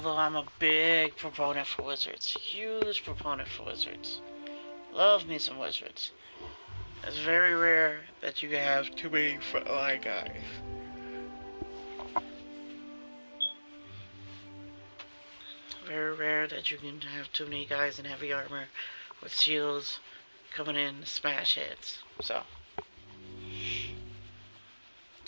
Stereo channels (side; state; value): both; inverted; correlation -1.00